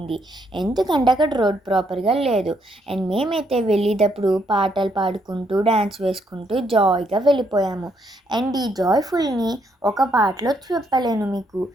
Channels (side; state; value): both; normal; correlation 0.73